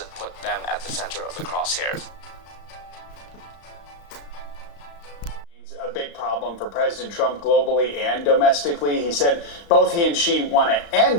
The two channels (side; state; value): right; late; 35 ms